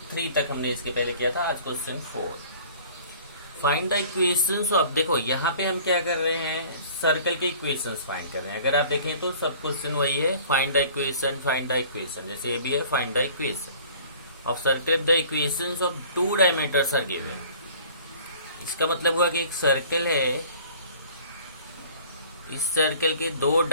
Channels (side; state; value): both; inverted; correlation -0.48